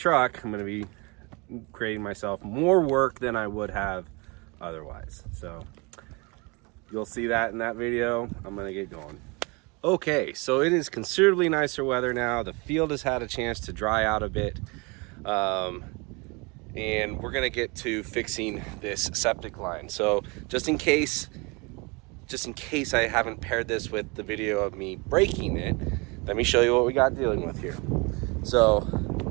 I'm going to be creating myself more work than I would have otherwise. So you'll see that in that video. I'm going to get going. Okay, so it is considerably nicer weather now. The field has had a chance to dry out a bit. And we're gonna get to fixing this septic line. So just in case I haven't paired this with the video of me breaking it, let me show you what we got dealing with here. So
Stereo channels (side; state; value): left; quieter; 28.5 dB